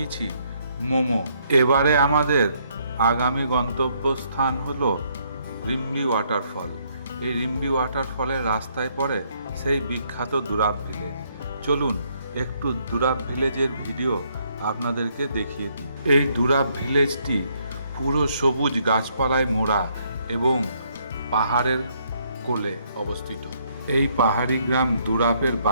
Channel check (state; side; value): inverted; both; correlation -0.70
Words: মোমো। এবারে আমাদের আগামী গন্তব্যস্থান হলো রিম্বি ওয়াটারফল। এই রিম্বি ওয়াটারফলের রাস্তায় পড়ে সেই বিখ্যাত দুরাব ভিলেজ। চলুন একটু দুরাব ভিলেজের ভিডিও আপনাদেরকে দেখিয়ে দিই। এই দুরাব ভিলেজটি পুরো সবুজ গাছপালায় মোড়া এবং পাহাড়ের কোলে অবস্থিত। এই পাহাড়ি গ্রাম দুরাপের